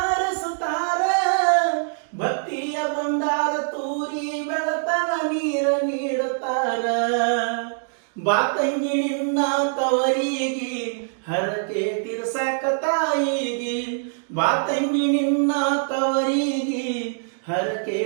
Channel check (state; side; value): silent; left; digital silence